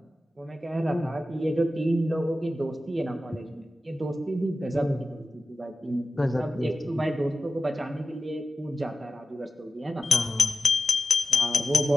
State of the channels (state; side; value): normal; both; correlation 0.92